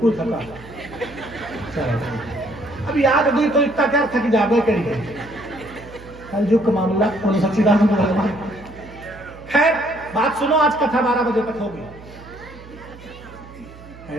थका। अब याद हुई तो इतना क्या थक जाबे करिए। कल जो मामला उन सच्चिदानंद भगवान। खैर बात सुनो, आज कथा 12 बजे तक होगी।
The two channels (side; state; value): right; noise; hum, 19 dB below the sound